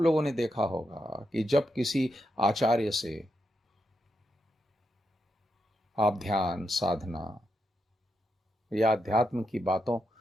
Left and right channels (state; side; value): normal; both; correlation 0.84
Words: ने देखा होगा कि जब किसी आचार्य से आप ध्यान साधना या अध्यात्म की बातों